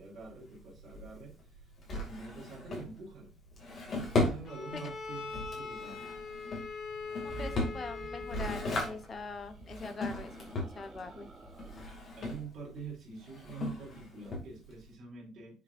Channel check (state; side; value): normal; both; correlation 0.50